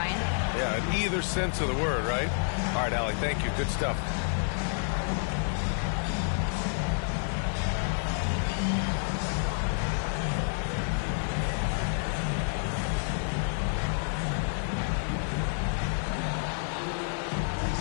Yeah, in either sense of the word, right? All right, Allie, thank you. Good stuff.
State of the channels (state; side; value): silent; right; 58 dB below the other